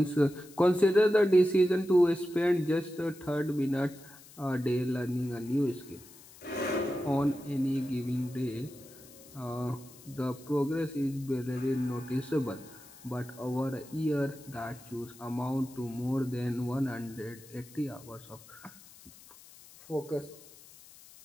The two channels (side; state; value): left; noise; hiss, 21 dB below the sound